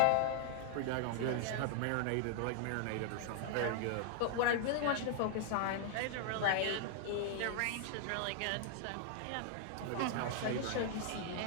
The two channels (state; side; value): different; both; correlation 0.00